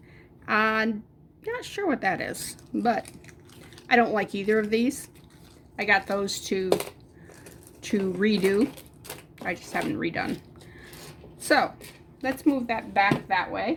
Not sure what that is, but I don't like either of these. I got those to redo. I just haven't redone. So let's move that back that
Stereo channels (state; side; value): identical; both; correlation 1.00